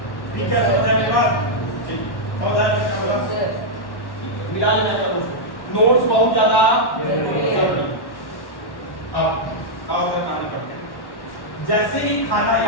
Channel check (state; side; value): late; right; 1.1 ms